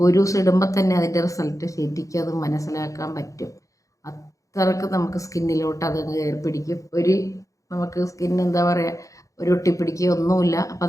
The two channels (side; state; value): right; late; 0.16 ms